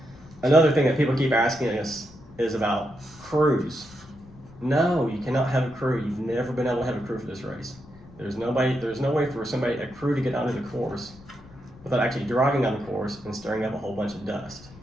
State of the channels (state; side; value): noise; left; rumble, 22 dB below the sound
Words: Another thing that people keep asking us is about crews. No, you cannot have a crew. You've never been able to have a crew for this race. There's no way for a crew to get onto the course without actually driving on the course and stirring up a whole bunch of dust.